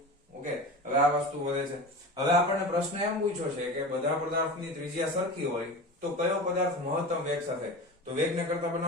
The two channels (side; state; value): both; normal; correlation 0.31